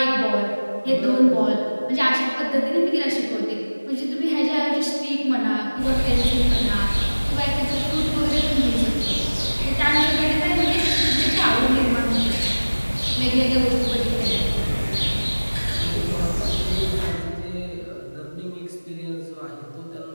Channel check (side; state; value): both; inverted; correlation -1.00